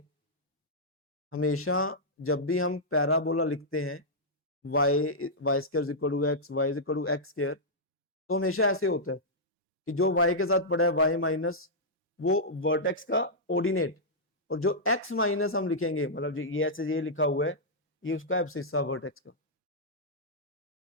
हमेशा जब भी हम पैराबोला लिखते हैं y square is equal to x, y is equal to x square, तो हमेशा ऐसे होता है कि जो y के साथ पड़ा है y माइनस वो वर्टेक्स का ऑर्डिनेट, और जो x माइनस हम लिखेंगे, मतलब ये ऐसे ये लिखा हुआ है, ये उसका एब्सिस्सा वर्टेक्स का,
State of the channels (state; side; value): normal; both; correlation -0.09